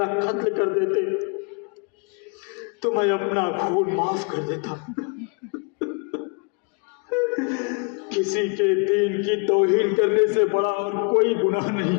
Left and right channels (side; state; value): right; quieter; 36.7 dB